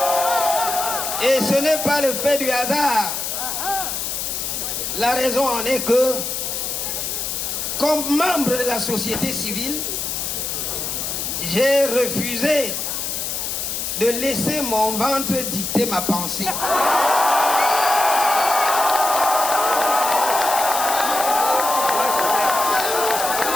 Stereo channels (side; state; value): left; noise; hiss, 3 dB below the sound